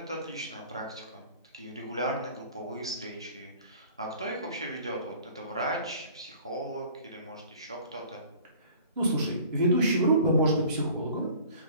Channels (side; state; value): both; inverted; correlation -0.49